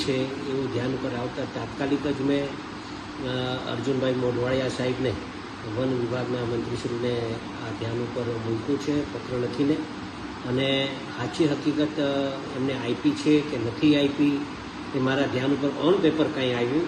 છે એવું ધ્યાન ઉપર આવતા તાત્કાલિક જ મેં અર્જુનભાઈ મોઢવાડિયા સાહેબને વન વિભાગના મંત્રીશ્રીને આ ધ્યાન ઉપર મૂક્યું છે પત્ર લખીને, અને સાચી હકીકત એમને આપી છે કે નથી આપી એ મારા ધ્યાન ઉપર ઓન પેપર કાંઈ આવ્યું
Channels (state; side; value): identical; both; correlation 1.00